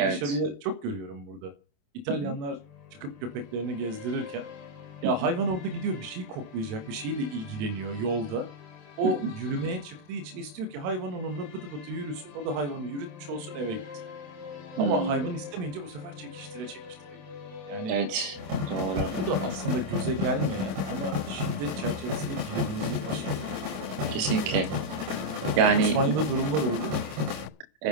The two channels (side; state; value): left; late; 27 ms